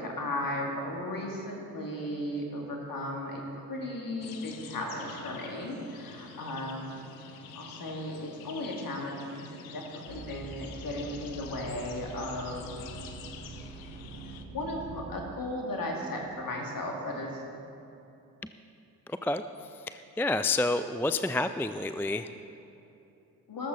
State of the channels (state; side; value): normal; both; correlation 0.36